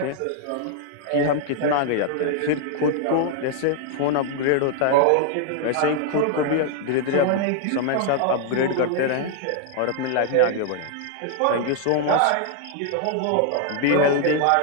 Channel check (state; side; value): different; both; correlation 0.00